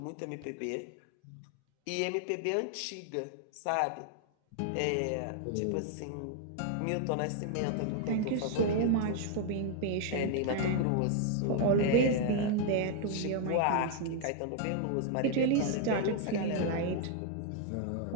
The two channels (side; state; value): both; different; correlation 0.00